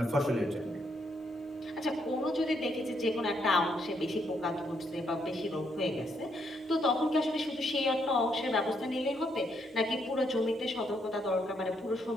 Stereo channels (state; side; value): normal; both; correlation 0.74